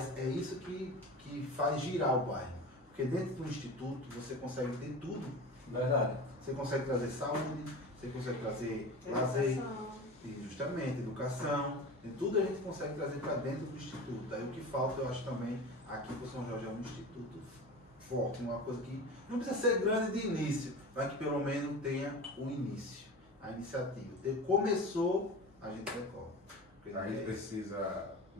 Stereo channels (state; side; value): normal; both; correlation 0.32